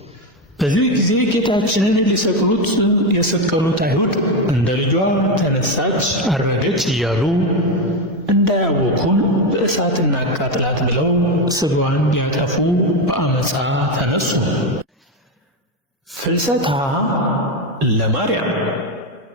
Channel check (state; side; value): normal; both; correlation 0.11